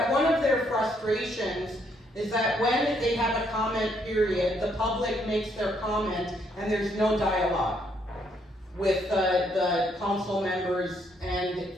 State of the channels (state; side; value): normal; both; correlation 0.71